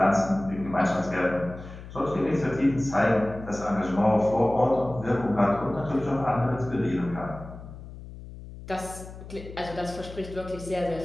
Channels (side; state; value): left; noise; hum, 14 dB below the sound